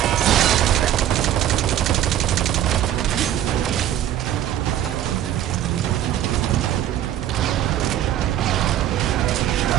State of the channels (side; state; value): left; quieter; 11.7 dB